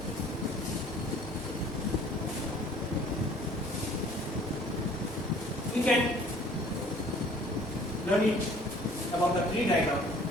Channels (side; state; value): both; normal; correlation 0.53